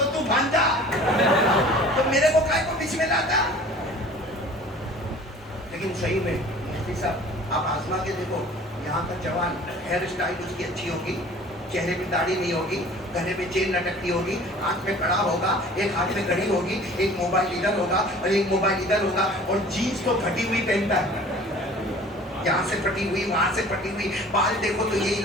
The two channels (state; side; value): normal; both; correlation 0.47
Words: تو بھانجا, تو میرے کو کائے کو بیچ میں لاتا. لیکن صحیح میں مفتی صاحب آپ آزما کے دیکھو, یہاں کا جوان ہیئر اسٹائل اس کی اچھی ہوگی, چہرے پہ داڑھی نہیں ہوگی, گلے میں چین لٹکتی ہوگی, ہاتھ میں کڑا ہوگا, ایک ہاتھ میں گھڑی ہوگی, ایک موبائل ادھر ہوگا اور ایک موبائل ادھر ہوگا, اور جینس تو پھٹی ہوئی پہنتا ہے, یہاں سے پھٹی ہوئی وہاں سے پھٹی ہوئی, بال دیکھو تو یہ